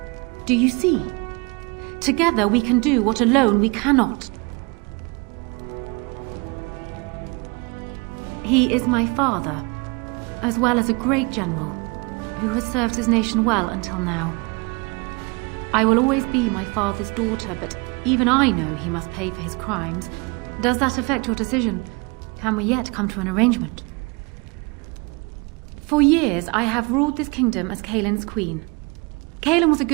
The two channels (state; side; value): quieter; left; 28.8 dB